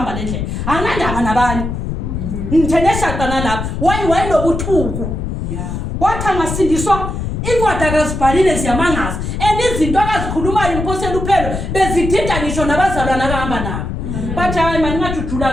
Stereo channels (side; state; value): left; noise; rumble, 4 dB below the sound